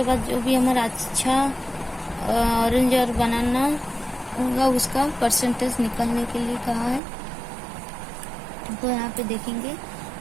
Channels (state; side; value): drops out; left; at 7.0 s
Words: बाद जो भी हमारा अच्छा ऑरेंज और बनाना होगा उसका परसेंटेज निकालने के लिए कहा है। तो यहाँ पे देखेंगे